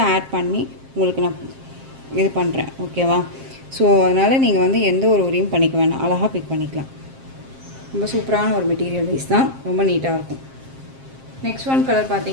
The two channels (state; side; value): late; left; 7.5 ms